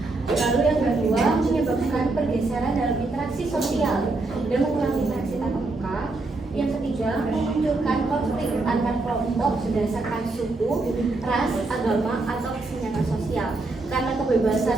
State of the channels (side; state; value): left; quieter; 3.3 dB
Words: Lalu yang kedua, menyebabkan pergeseran dalam interaksi sosial dan mengurangi interaksi tatap muka. Yang ketiga, memunculkan konflik antar kelompok berdasarkan suku, ras, agama, atau kesenjangan sosial. Karena kebebasan